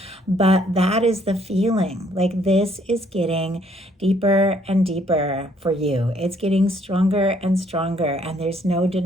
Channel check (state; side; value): normal; both; correlation 0.65